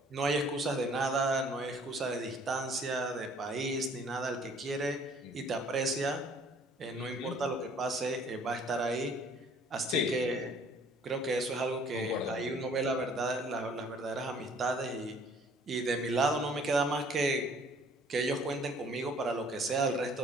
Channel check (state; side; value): normal; both; correlation 0.57